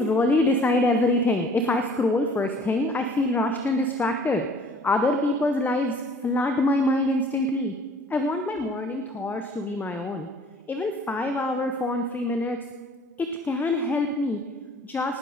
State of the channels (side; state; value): both; normal; correlation 0.53